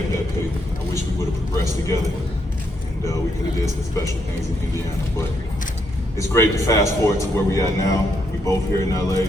that pace. I wish we would have progressed together, and we could have did some special things in Indiana. But it's great to fast forward to where we are now. We both here in LA.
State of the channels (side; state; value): both; normal; correlation 0.77